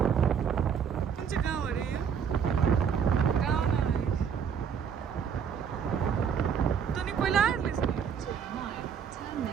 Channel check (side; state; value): left; quieter; 7.4 dB